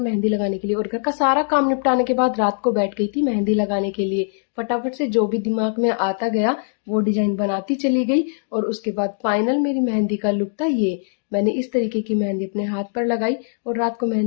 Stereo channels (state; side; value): silent; right; digital silence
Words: लगाने के लिए। और घर का सारा काम निपटाने के बाद रात को बैठ गई थी मेहंदी लगाने के लिए। फटाफट से जो भी दिमाग में आता गया वो डिजाइन बनाती चली गई। और उसके बाद फाइनल मेरी मेहंदी का लुक था ये। मैंने इस तरीके की मेहंदी अपने हाथ पर लगाई और रात को